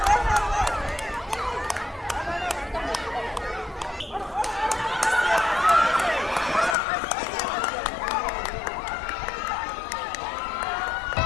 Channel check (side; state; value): right; drops out; at 6.8 s